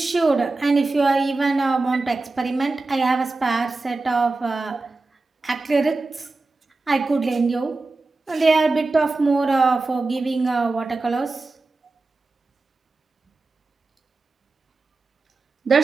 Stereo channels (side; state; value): left; quieter; 3.5 dB